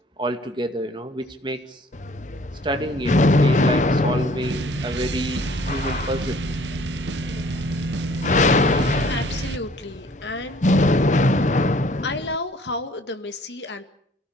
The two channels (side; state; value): both; normal; correlation 0.55